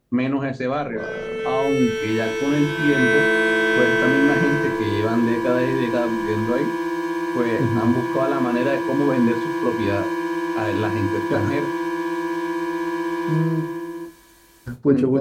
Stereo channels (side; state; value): both; identical; correlation 1.00